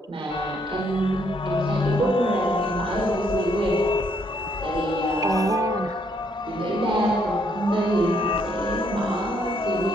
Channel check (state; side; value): normal; both; correlation 0.71